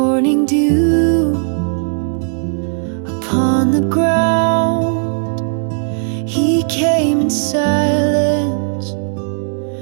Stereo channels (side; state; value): left; silent; 69 dB below the other